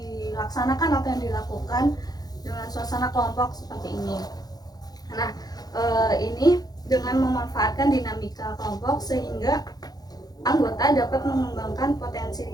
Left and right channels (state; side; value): late; right; 0.19 ms